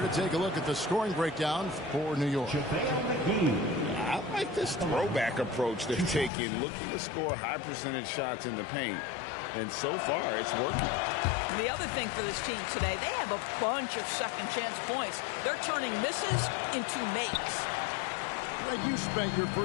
to take a look at the scoring breakdown for New York. I like this throwback approach they're taking, looking to score high percentage shots in the paint. And so far, it's working. And the other thing for this team today, they have a bunch of second chance points. They're turning misses into makes. Greg, you spent your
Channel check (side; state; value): right; drops out; at 6.3 s